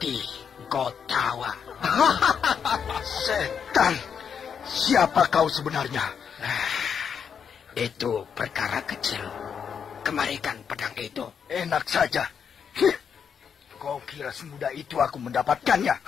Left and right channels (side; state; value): right; quieter; 7.1 dB